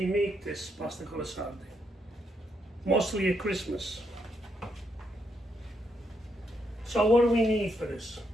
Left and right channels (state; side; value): normal; both; correlation 0.78